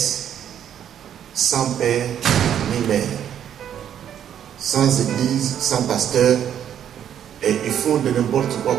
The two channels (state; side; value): quieter; left; 9.7 dB